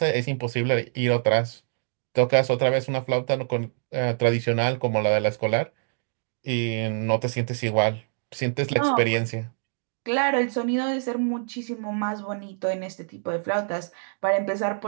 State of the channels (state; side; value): silent; left; digital silence